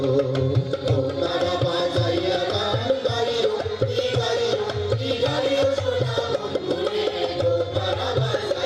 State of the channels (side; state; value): both; identical; correlation 1.00